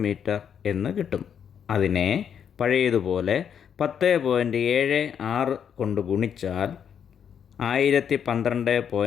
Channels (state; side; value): quieter; right; 8.1 dB